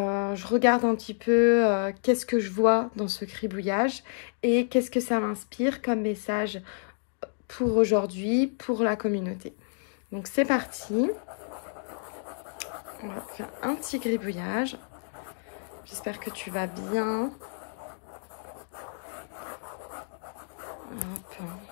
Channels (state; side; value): silent; right; digital silence